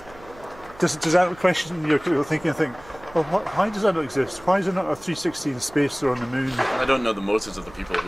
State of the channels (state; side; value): noise; right; hum, 22 dB below the sound